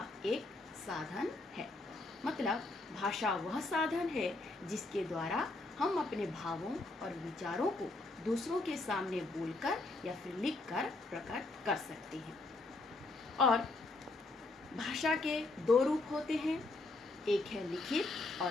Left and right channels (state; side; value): quieter; right; 3.1 dB